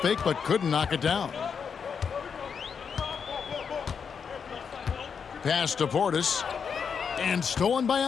fake, but couldn't knock it down. Pass to Portis. And stolen by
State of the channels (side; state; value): right; quieter; 6.5 dB